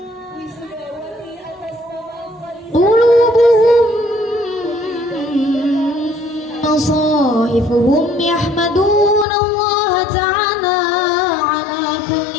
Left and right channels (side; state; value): right; drops out; at 9.2 s